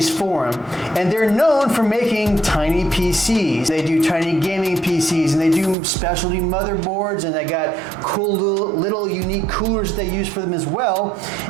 and they're known for making tiny PCs. They do tiny gaming PCs, and they do specialty motherboards, and they got cool little unique coolers they use for them as well.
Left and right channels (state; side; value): drops out; left; at 5.8 s